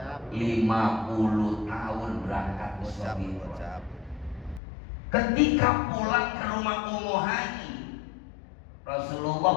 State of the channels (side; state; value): right; drops out; at 4.6 s